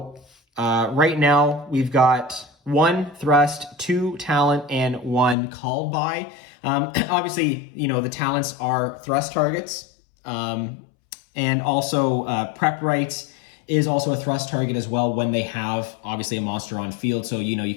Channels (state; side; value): drops out; right; at 5.4 s